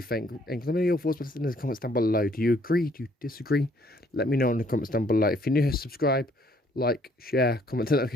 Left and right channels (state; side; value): normal; both; correlation 0.64